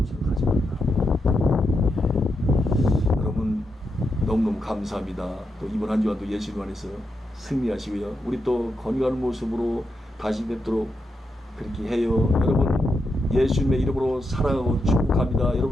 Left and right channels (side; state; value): both; normal; correlation 0.84